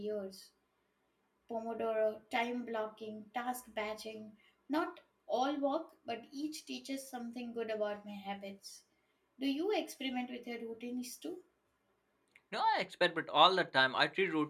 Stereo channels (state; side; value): identical; both; correlation 1.00